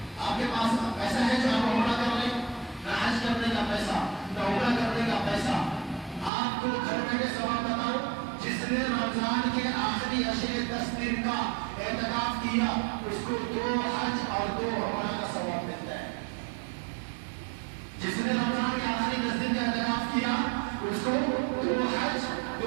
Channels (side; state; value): left; drops out; at 6.3 s